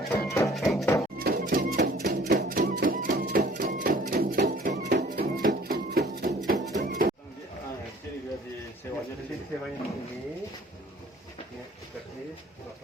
Sewanya di sini, ini gratis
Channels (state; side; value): normal; both; correlation 0.52